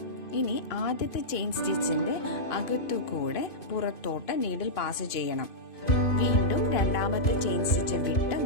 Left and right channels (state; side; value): late; right; 2.5 ms